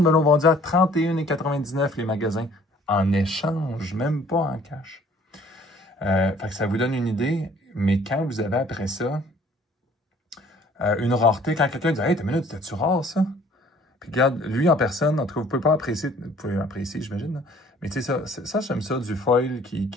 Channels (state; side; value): normal; both; correlation 0.56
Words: me l'a vendu à 31,99$ les magasins. En échange, même pas en cash. Fait que ça vous donne une idée, mais quand vous avez après ça une rareté, quand quelqu'un dit « Hey, t'as une minute, c'était-tu rare ça? » Puis regarde, lui en personne, en tout cas, vous pouvez pas apprécier, vous pouvez apprécier, j'imagine, mais tu sais, ça j'aime ça, du foil qui